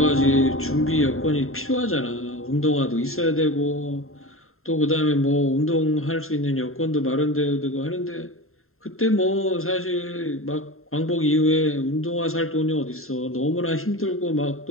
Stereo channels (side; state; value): right; late; 0.61 ms